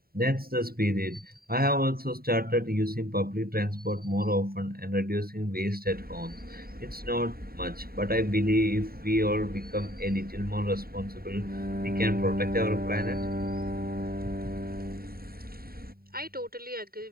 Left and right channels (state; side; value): late; left; 0.43 ms